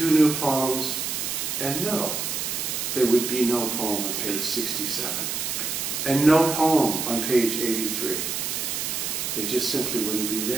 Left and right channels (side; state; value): right; noise; hiss, 2 dB below the sound